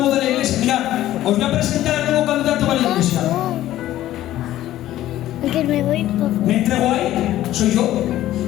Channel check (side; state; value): right; quieter; 13.9 dB